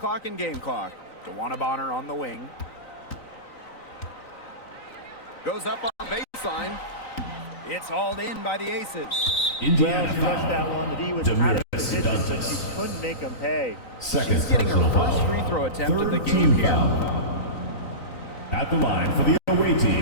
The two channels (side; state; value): right; late; 3.9 ms